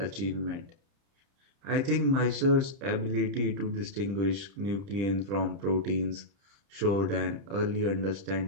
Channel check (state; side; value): late; left; 30 ms